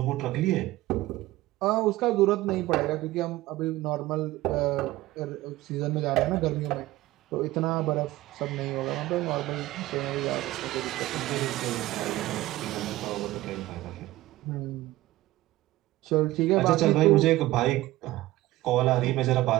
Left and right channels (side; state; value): left; quieter; 17.1 dB